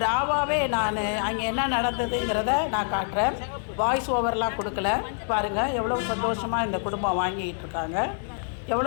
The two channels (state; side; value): silent; right; 61 dB below the other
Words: ராவாகவே நான் அங்கே என்ன நடந்ததுங்கிறத நான் காட்டுறேன். வாய்ஸ் ஓவர்லாம் கொடுக்கல. பாருங்கள் எவ்வளோ சந்தோஷமாக இந்த குடும்பம் வாங்கிக்கிட்டு இருக்காங்க.